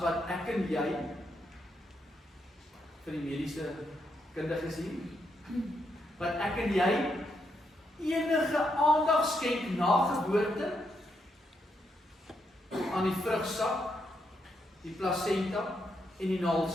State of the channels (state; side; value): normal; both; correlation 0.80